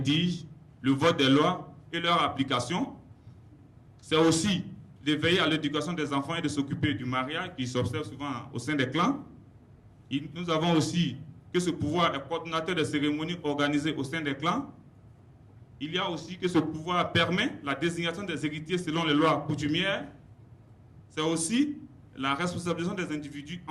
le vote des lois et leur application. C'est aussi de veiller à l'éducation des enfants et de s'occuper du mariage qui s'observe souvent au sein des clans. Nous avons aussi que ce pouvoir est coordonnateur des cérémonies organisées au sein des clans. Il y a aussi que ce pouvoir permet la désignation des héritiers selon les lois coutumières. C'est aussi la responsabilisation des individus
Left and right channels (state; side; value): identical; both; correlation 1.00